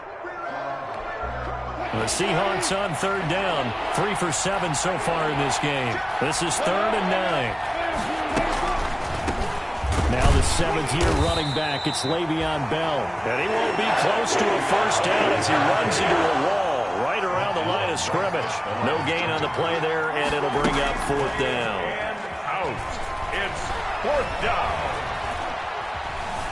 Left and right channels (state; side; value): identical; both; correlation 1.00